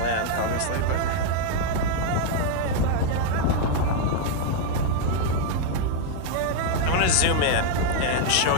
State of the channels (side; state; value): both; different; correlation 0.00